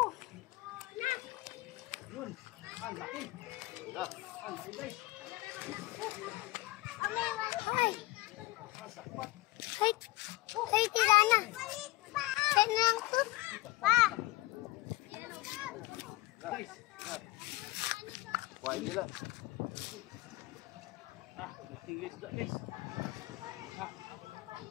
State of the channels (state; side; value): quieter; right; 19.4 dB